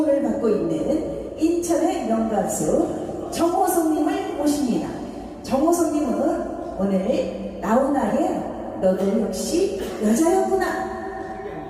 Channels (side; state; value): both; identical; correlation 1.00